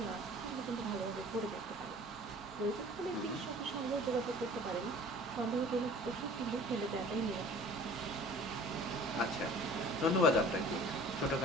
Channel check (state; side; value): normal; both; correlation 0.47